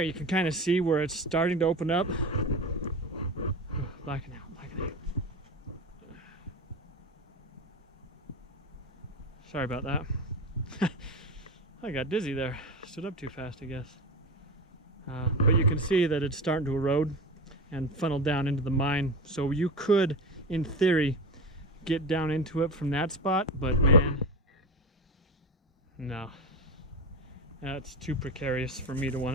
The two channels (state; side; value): normal; both; correlation 0.24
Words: you can kind of see where it's starting to open up. Blacking out. Sorry about that. I got dizzy there. Stood up too fast, I guess. But you can see that it's starting to erode and funnel down into the mine. So you could, in theory, get down into it from that spot, but man, no. That's too precarious for me to